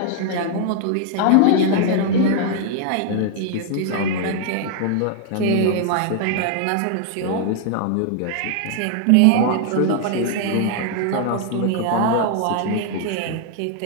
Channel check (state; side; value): different; both; correlation 0.00